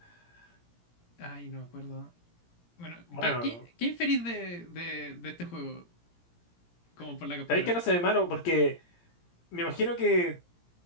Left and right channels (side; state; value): right; late; 17 ms